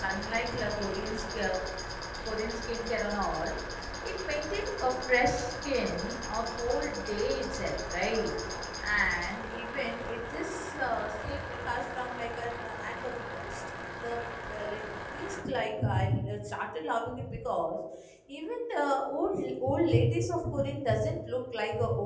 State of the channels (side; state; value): both; identical; correlation 1.00